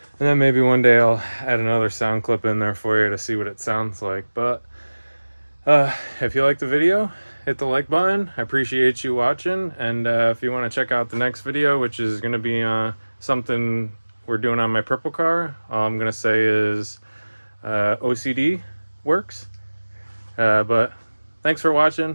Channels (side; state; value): both; inverted; correlation -1.00